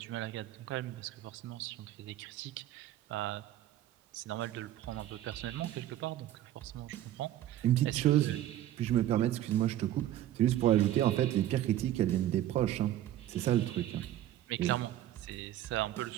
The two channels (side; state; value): left; quieter; 12.8 dB